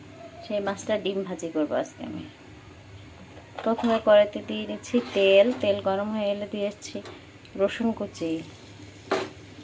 সেই মাছটা ডিম ভাজি করবো আজকে আমি। প্রথমে কড়াইতে দিয়ে নিচ্ছি তেল। তেল গরম হয়ে এলে দিয়েছি রসুন কুচি,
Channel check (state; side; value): identical; both; correlation 1.00